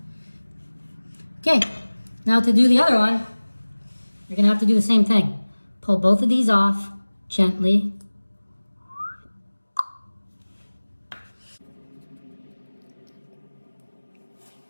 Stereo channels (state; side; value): inverted; both; correlation -1.00